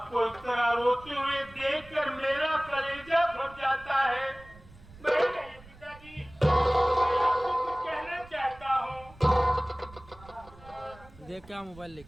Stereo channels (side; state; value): right; noise; rumble, 22 dB below the sound